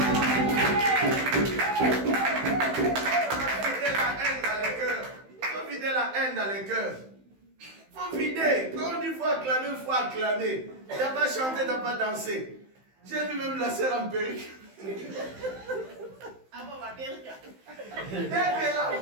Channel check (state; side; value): late; left; 15 ms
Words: La haine dans les cœurs. Il faut vider. Quand on dit qu'il faut acclamer, il faut acclamer. Tu n'as pas chanté, tu n'as pas dansé. J'ai vu même la sœur en perruque. Ah bon, ma perruque. Dès qu'elle a